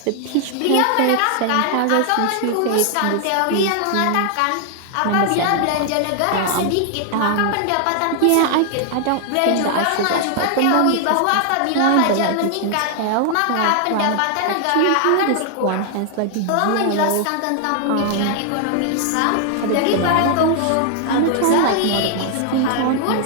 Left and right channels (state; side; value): different; both; correlation 0.00